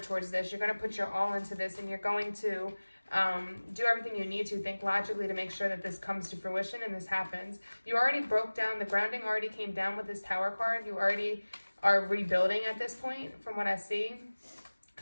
this. You're going to put your all into this, and you're going to do everything you need to, think logically to make sure that this comes to fruition and this happens. You already broke down, the grounding already came down with this Tower card. You already are rebuilding at this point from what I see.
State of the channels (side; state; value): both; inverted; correlation -1.00